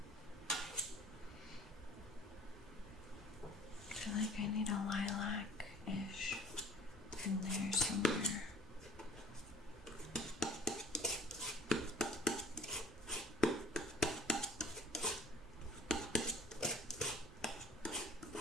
I feel like I need a lilac-ish in there somewhere.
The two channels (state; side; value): normal; both; correlation 0.48